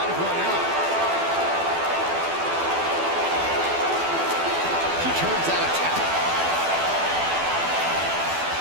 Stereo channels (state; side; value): late; left; 12 ms